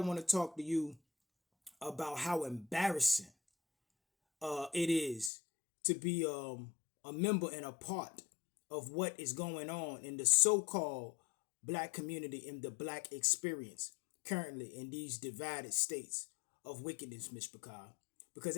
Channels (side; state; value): right; drops out; at 5.3 s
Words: to talk to you about how embarrassing it is to be a member and a part of what is going on in the so-called black community, in the black experience currently in these divided states of wickedness, Ms. Picard. Because